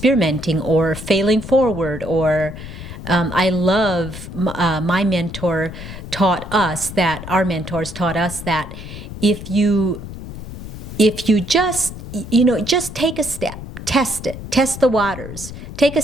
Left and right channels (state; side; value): noise; left; rumble, 11 dB below the sound